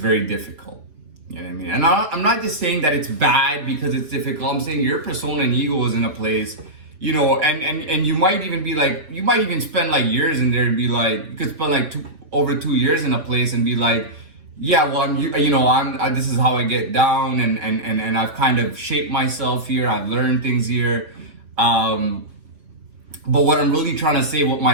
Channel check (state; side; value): late; left; 5.3 ms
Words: difficult. You know what I mean? And I'm not just saying that it's bad because it's difficult. I'm saying your persona and ego is in a place, and you might even be like, you might even spend like years in there and be like, you could spend like over 2 years in a place and be like, yeah, well, this is how I get down, and I've kind of shaped myself here. I've learned things here. But what I'm really trying to say, what